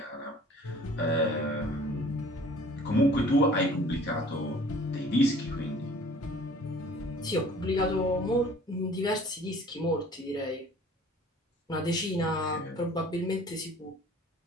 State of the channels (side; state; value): both; normal; correlation 0.50